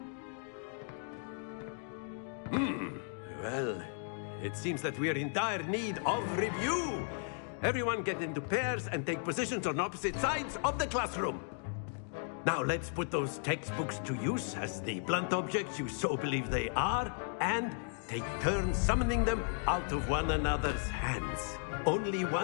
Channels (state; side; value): silent; right; 54 dB below the other